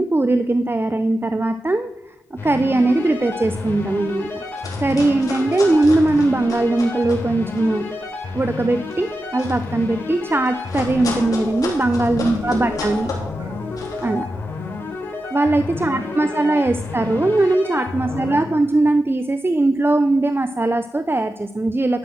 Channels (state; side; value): normal; both; correlation 0.91